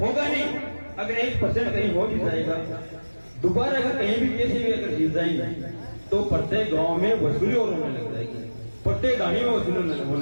नहीं, अगर 1% कहीं हो भी जाएगा, दोबारा अगर कहीं भी कैसे भी अगर जीत जाएंगे तो प्रत्येक गांव में वसूली और होने लग जाएगी, प्रत्येक गाड़ी में वसूली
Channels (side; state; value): both; inverted; correlation -1.00